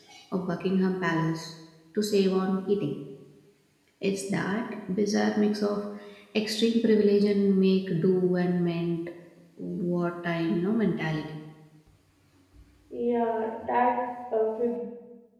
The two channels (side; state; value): both; identical; correlation 1.00